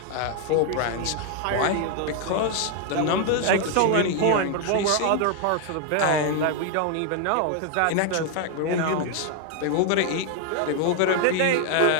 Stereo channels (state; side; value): different; both; correlation 0.00